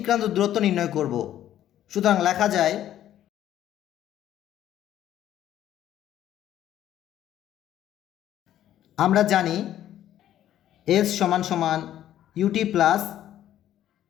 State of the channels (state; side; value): quieter; right; 11.9 dB